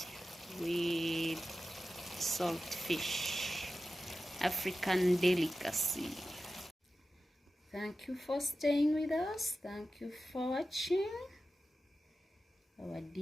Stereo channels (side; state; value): both; normal; correlation 0.93